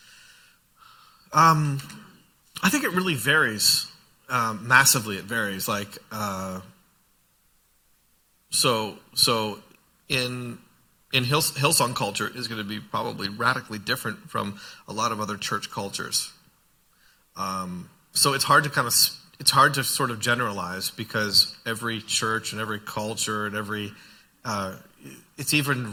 I think it really varies. Massively, it varies. Like, so in Hillsong culture is going to be probably radically different from a lot of other church cultures. So it's hard to sort of generalize because every church and every culture and it's even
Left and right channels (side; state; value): both; identical; correlation 1.00